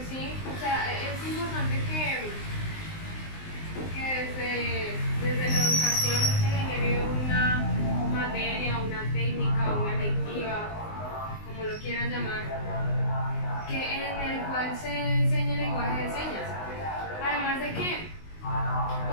sí, o sea, es importante que desde la educación se genere una materia, una técnica, una electiva, como lo quieran llamar, en el cual se enseñe el lenguaje de señas. Además de que,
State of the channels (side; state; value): right; late; 19 ms